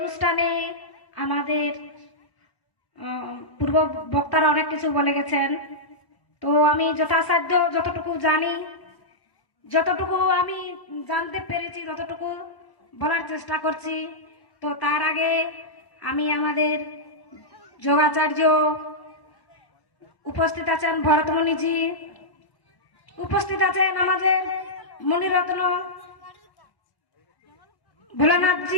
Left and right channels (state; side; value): late; right; 1.0 ms